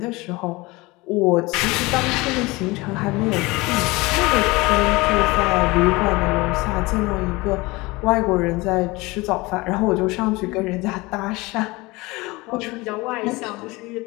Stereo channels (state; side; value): quieter; right; 22.9 dB